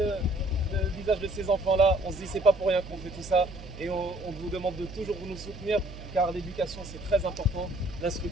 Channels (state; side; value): noise; right; hum, 14 dB below the sound